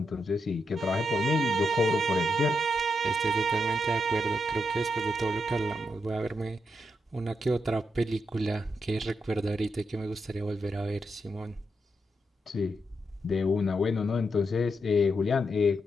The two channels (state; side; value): normal; both; correlation 0.83